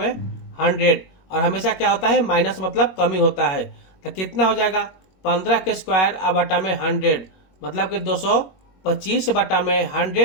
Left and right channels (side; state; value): right; late; 21 ms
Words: 100, और हमेशा क्या होता है माइनस मतलब कमी होता है। तो कितना हो जाएगा 15 के स्क्वायर बटा में 100, मतलब कि 225 बटा में